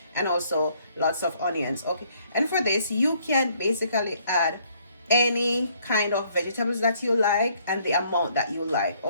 and also lots of onions, okay? And for this, you can basically add any kind of vegetables that you like and the amount that you like,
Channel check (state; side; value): inverted; both; correlation -0.65